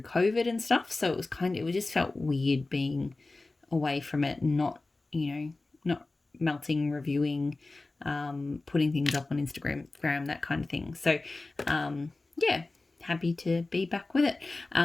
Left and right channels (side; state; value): right; quieter; 3.2 dB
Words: COVID and stuff. So it just felt weird being away from it and not melting, reviewing, putting things up on Instagram, that kind of thing. So, happy to be back with it.